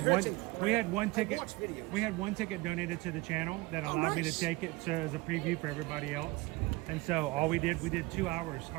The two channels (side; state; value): left; quieter; 22.4 dB